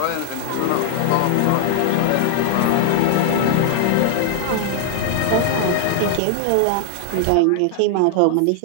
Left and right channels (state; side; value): different; both; correlation 0.00